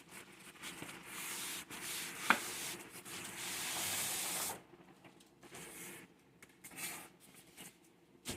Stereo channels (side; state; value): both; identical; correlation 1.00